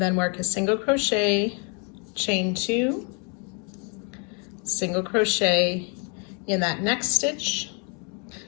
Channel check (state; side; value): quieter; right; 36.7 dB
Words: then work a single crochet, chain 2, single crochet in that next stitch.